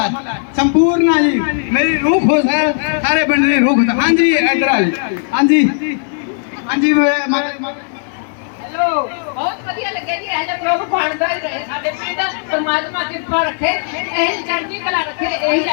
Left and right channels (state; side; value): silent; right; 63 dB below the other